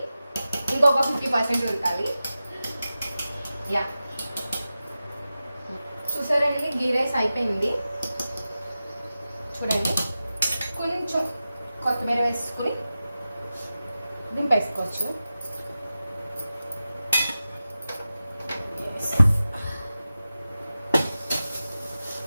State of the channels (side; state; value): both; inverted; correlation -0.94